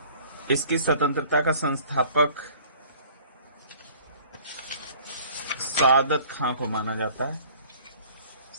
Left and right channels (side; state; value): both; inverted; correlation -0.50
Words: इसकी स्वतंत्रता का संस्थापक सादत खां को माना जाता है।